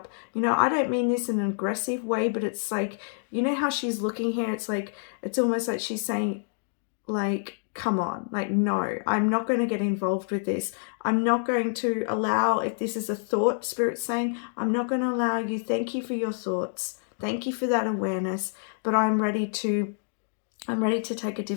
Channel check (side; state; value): right; silent; digital silence